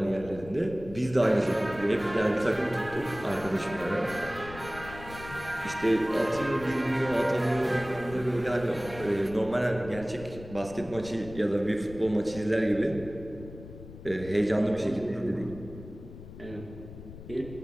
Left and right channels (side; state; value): left; noise; rumble, 15 dB below the sound